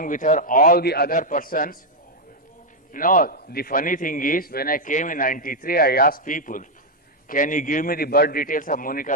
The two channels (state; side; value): normal; both; correlation 0.01